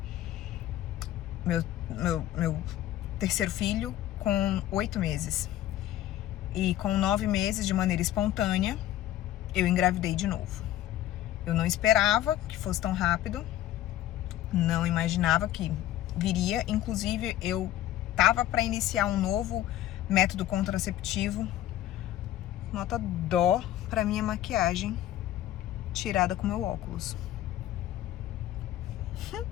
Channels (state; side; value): quieter; right; 13.2 dB